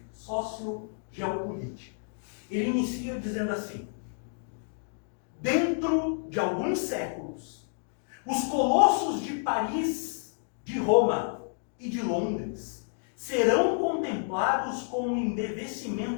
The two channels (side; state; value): right; silent; digital silence